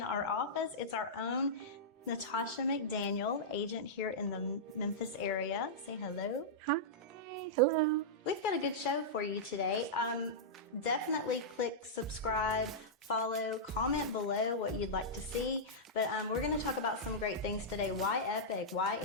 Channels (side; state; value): both; normal; correlation -0.11